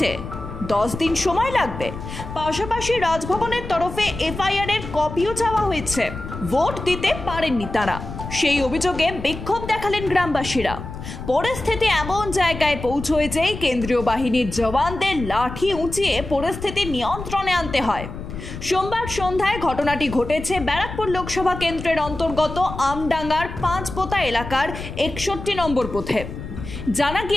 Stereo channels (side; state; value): left; noise; rumble, 9 dB below the sound